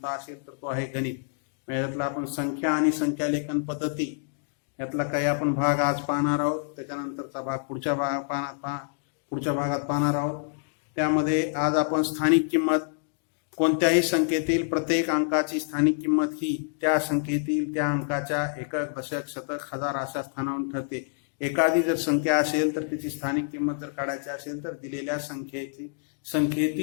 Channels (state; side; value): silent; right; digital silence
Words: असेल तर तो आहे गणित. यातला आपण संख्या आणि संख्यालेखन पद्धती यातला काही आपण भाग आज पाहणार आहोत. त्याच्यानंतरचा भाग पुढच्या भागात पाहणार आहोत. त्यामध्ये आज आपण स्थानिक किंमत, कोणत्याही संख्येतील प्रत्येक अंकाची स्थानिक किंमत ही त्या संख्येतील त्या अंकाच्या एकक, दशक, शतक, हजार अशा स्थानावरून ठरते. एखादी जर संख्या असेल तर त्याची स्थानिक किंमत जर काढायची असेल तर दिलेल्या